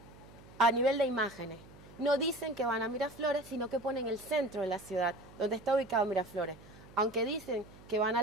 a nivel de imágenes. No dicen que van a Miraflores, sino que ponen el centro de la ciudad, donde está ubicado Miraflores. Aunque dicen que van a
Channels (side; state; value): right; noise; hum, 21 dB below the sound